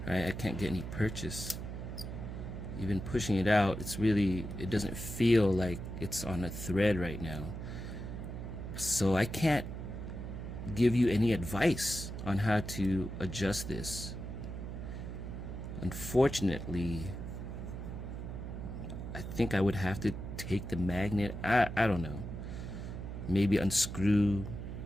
Right? I can't get any purchase. Even pushing it out, it doesn't feel like it's on a thread right now. So I can't give you any advice on how to adjust this. Unfortunately, I think I would have to take the magnet. I don't know. Maybe unscrew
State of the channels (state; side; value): noise; right; hum, 7 dB below the sound